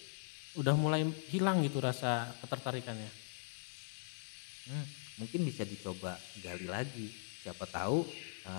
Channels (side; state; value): right; silent; digital silence